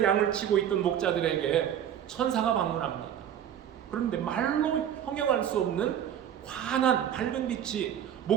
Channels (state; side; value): quieter; left; 9.8 dB